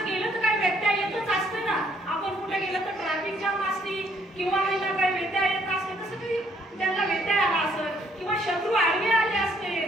गेलं तर काय व्यत्यय येतच असते ना. आपण कुठे गेलं तर ट्रॅफिक जाम असते किंवा आहे ना काय व्यत्यय येत असते, तसं काही त्यांना व्यत्यय आला असत किंवा शत्रू आडवे आले असते.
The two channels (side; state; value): both; normal; correlation 0.67